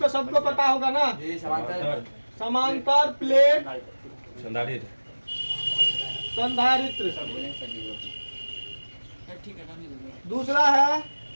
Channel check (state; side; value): inverted; both; correlation -1.00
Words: सबको पता होगा ना, समांतर प्लेट संधारित्र। दूसरा है